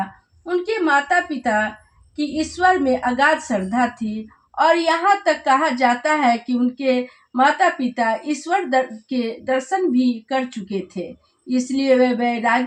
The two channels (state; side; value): identical; both; correlation 1.00